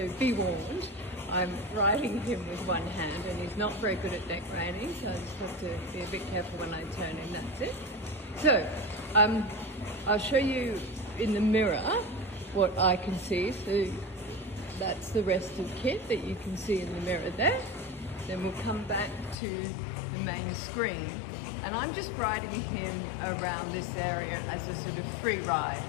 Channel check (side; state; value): right; drops out; at 19.4 s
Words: be warned. I'm riding him with one hand and he's not very good at neck reining, so I just have to be a bit careful when I turn him, that's it. So, I'll show you in the mirror what I can see. So that's the rest of KITT that you can see in the mirror there. Then we'll come back to the main screen, and I'm just riding him around this area as a sort of free ride.